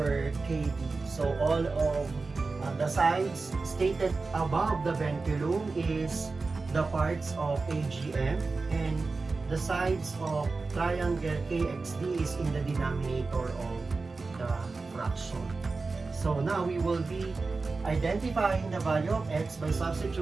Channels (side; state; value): left; quieter; 3.9 dB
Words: KD. So all of the sides stated above the venculum is the parts of AGM, and the sides of triangle KXD is in the denominator of the fraction. So now we will be identifying the value of x by